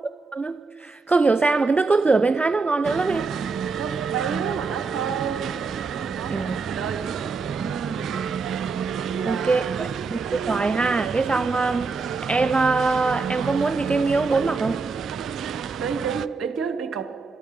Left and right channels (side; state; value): left; quieter; 4.3 dB